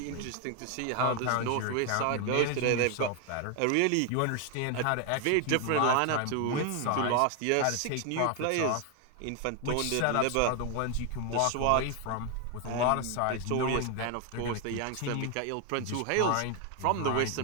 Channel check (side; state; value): both; different; correlation 0.01